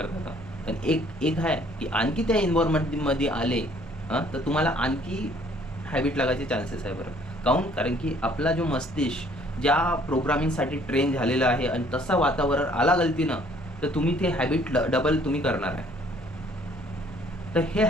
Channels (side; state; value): both; normal; correlation 0.60